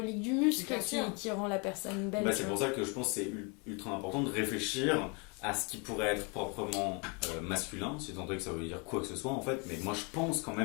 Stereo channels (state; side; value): quieter; right; 32.5 dB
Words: du muscle Bien sûr. qui rend la personne belle. Bah, tu c'est vois. pour ça que je pense que c'est ultra important de réfléchir à ce qui pourrait être proprement masculin, si tant est que ça veut dire quoi que ce soit en fait, mais moi je pense quand